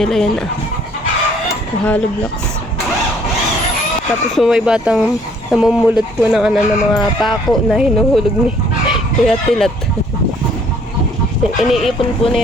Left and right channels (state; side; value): normal; both; correlation 0.61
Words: yan. Hollow blocks. Tapos po may batang namumulot po ng ano, ng mga pako na hinuhulog ni Kuya Tilat. Iniipon po